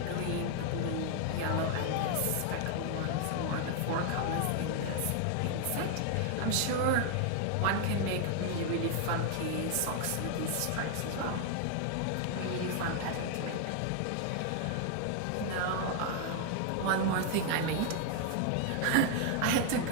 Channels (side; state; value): both; different; correlation 0.00